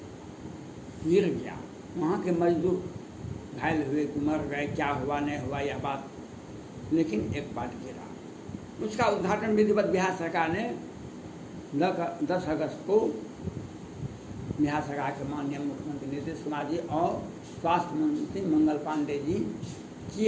गिर गया। वहाँ के मजदूर घायल हुए कि मर गए, क्या हुआ नहीं हुआ यह बात, लेकिन एक पार्ट गिरा। उसका उद्घाटन विधिवत बिहार सरकार ने 10 अगस्त को बिहार सरकार के माननीय मुख्यमंत्री नीतीश कुमार जी और स्वास्थ्य मंत्री मंगल पांडे जी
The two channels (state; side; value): identical; both; correlation 1.00